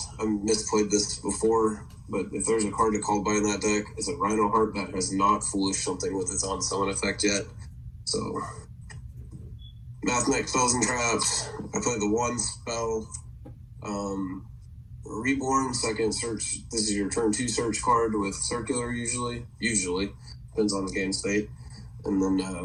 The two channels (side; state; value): both; identical; correlation 1.00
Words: I misplayed this before, but if there's a card to call by in that deck, it's a Rhino Heart that has not Foolish something with its on summon effect yet. So, Mathmech Spells and Traps. I played the 1 spell. Reborn, second search. This is your turn 2 search card with Circular usually. Depends on the game state. And then